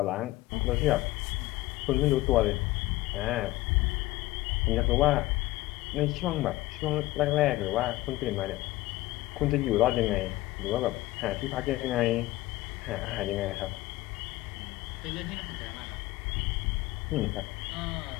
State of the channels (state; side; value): quieter; right; 17.8 dB